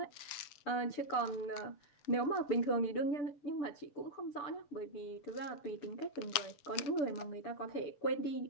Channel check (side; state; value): right; late; 7.7 ms